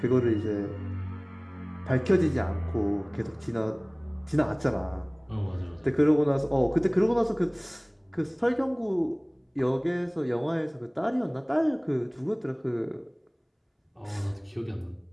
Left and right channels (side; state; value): both; identical; correlation 1.00